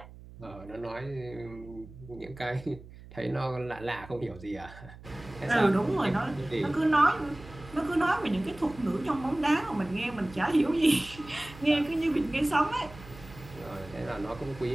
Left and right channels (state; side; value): noise; right; hum, 18 dB below the sound